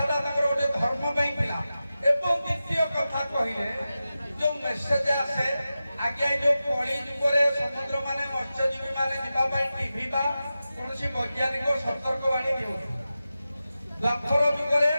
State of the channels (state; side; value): inverted; both; correlation -0.93